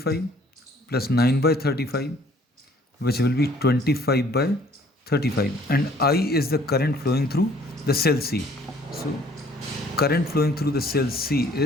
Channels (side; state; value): both; normal; correlation 0.58